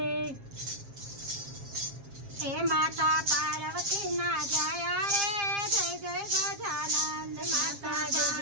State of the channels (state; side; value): late; left; 7.4 ms